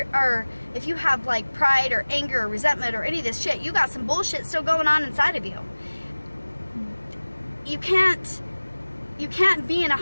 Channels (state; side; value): inverted; both; correlation -1.00